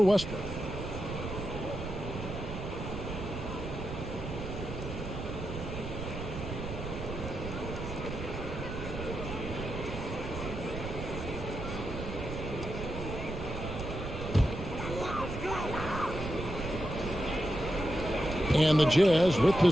Westbrook. And the Jazz with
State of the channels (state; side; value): noise; right; rumble, 7 dB below the sound